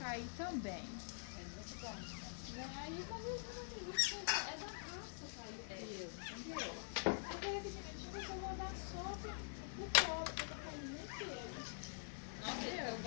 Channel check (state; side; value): silent; right; digital silence